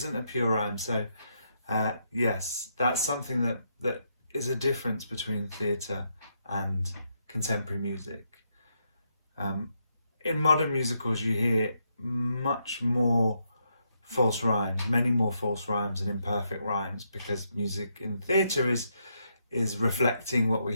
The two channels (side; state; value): both; inverted; correlation -0.79